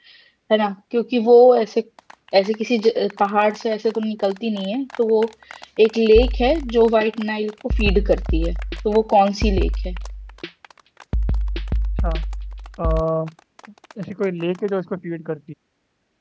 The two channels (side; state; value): both; identical; correlation 1.00